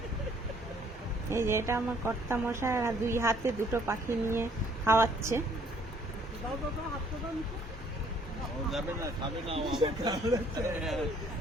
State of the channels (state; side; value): normal; both; correlation 0.62